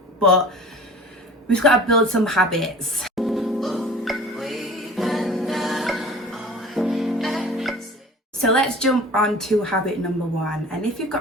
but we've got to build some habits. So let's jump on to habit number one. And if you've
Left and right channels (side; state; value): both; normal; correlation 0.42